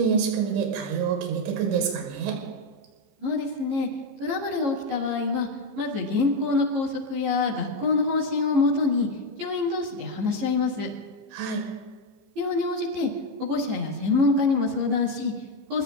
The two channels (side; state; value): left; late; 15 ms